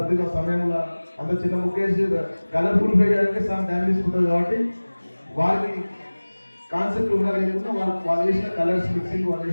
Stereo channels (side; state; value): both; inverted; correlation -1.00